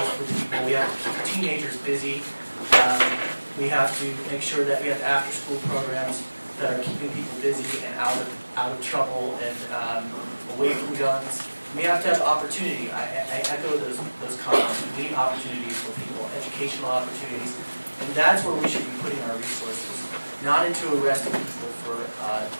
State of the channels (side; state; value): both; inverted; correlation -1.00